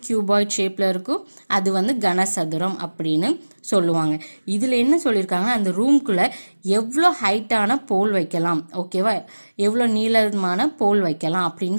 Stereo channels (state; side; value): inverted; both; correlation -1.00